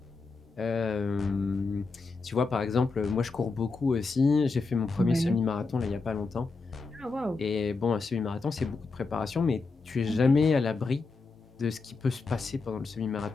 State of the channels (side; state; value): right; quieter; 4.1 dB